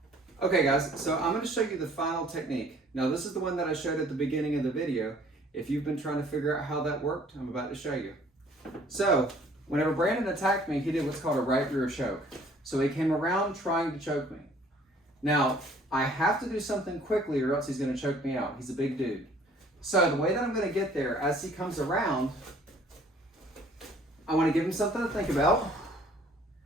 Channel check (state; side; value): normal; both; correlation 0.56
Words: Okay guys, so I'm going to show you the final technique. Now this is the one that I showed at the beginning of the video. If you've been trying to figure out how that worked, I'm about to show you. So, whenever Brandon attacked me, he did what's called a right rear choke. So he came around trying to choke me. Now, I have to do something quickly or else he's going to choke me out. He's a big dude. So the way that I'm going to get there, as he comes around, I want to give him something to think about.